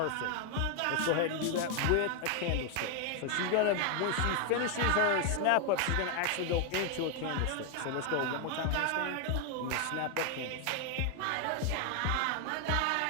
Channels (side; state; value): both; different; correlation 0.01